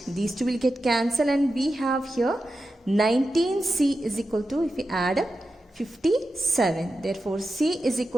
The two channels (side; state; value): both; normal; correlation 0.91